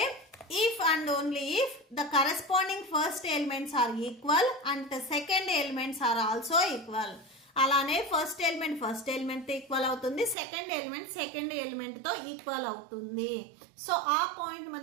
if and only if the corresponding first elements are equal and the second elements are also equal. అలానే ఫస్ట్ ఎలిమెంట్తో ఈక్వల్ అవుతుంది, సెకండ్ ఎలిమెంట్తో ఈక్వల్ అవుతుంది. సో ఆ పాయింట్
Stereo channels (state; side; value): drops out; left; at 10.4 s